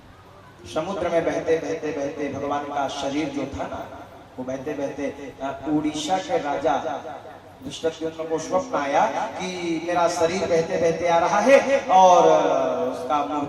समुद्र में बहते बहते बहते भगवान का शरीर जो था ना, वो बहते बहते उड़ीसा के राजा दुष्टद्युम्न को स्वप्न आया कि मेरा शरीर बहते बहते आ रहा है और उसका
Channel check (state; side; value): identical; both; correlation 1.00